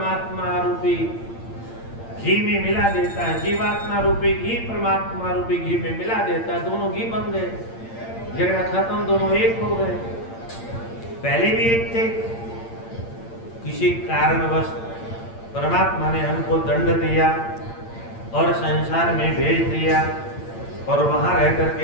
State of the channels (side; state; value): right; late; 8.8 ms